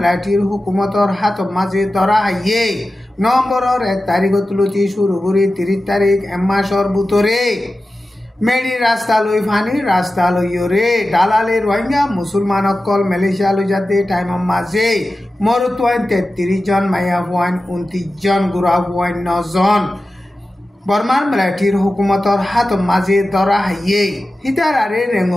হুকুমতর হাত মাঝে ধরা হাইয়ে নভেম্বরের 1 তারিখ তুলতি শুরু করে 30 তারিখ এক মাসর ভিতরে মেডি রাস্তা লই ফানি রাস্তা লইরে দালালে রোহিঙ্গা মুসলমান অকল মালয়েশিয়া লই যাতে টাইমর মাঝে মরুত 33 জন মাইয়া 29 জন গুড়া 9 জন বর্মার মিলিটারির হুকুমতর হাত মাঝে ধরা হাইয়ে হিতার আরে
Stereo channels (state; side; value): normal; both; correlation 0.94